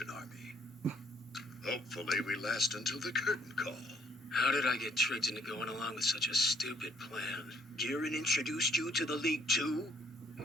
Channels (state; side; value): normal; both; correlation 0.65